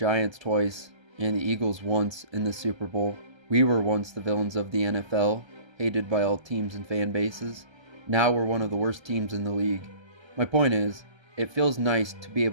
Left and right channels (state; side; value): late; left; 1.3 ms